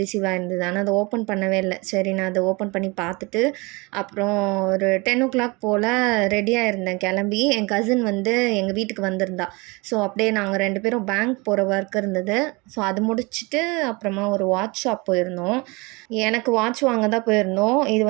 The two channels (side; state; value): left; quieter; 26.4 dB